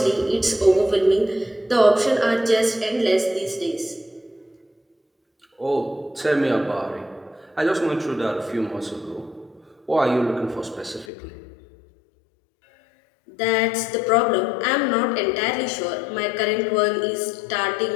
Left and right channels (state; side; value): drops out; right; at 11.1 s